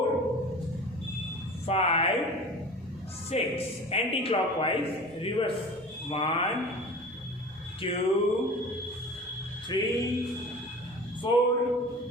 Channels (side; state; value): both; normal; correlation 0.38